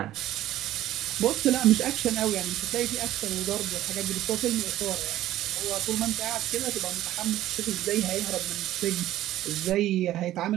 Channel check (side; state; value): left; quieter; 14.1 dB